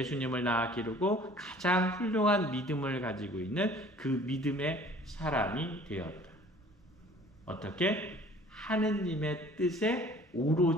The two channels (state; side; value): normal; both; correlation 0.50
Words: 낳아 기르고 가장 훌륭한 믿음을 가지고 있는 그 믿음의 사람이 되었다. 어떻게? 하느님의 뜻에